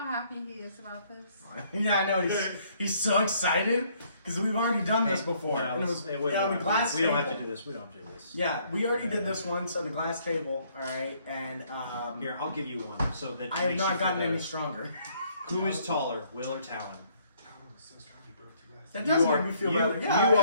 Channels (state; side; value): inverted; both; correlation -0.65